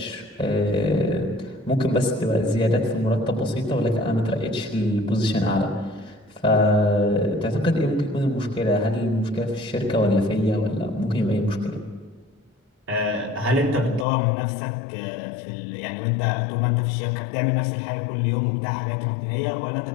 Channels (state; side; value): drops out; right; at 14.1 s